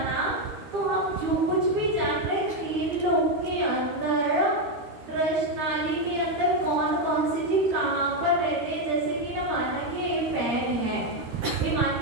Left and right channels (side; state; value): left; late; 13 ms